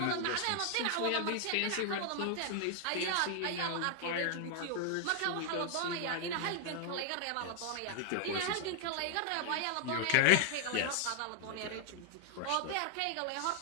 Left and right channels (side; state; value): both; different; correlation 0.00